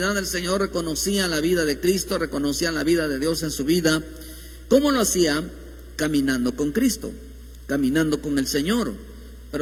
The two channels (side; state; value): both; identical; correlation 1.00